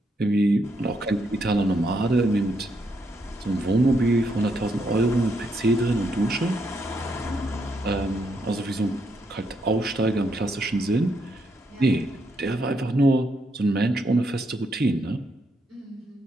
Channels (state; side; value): normal; both; correlation 0.77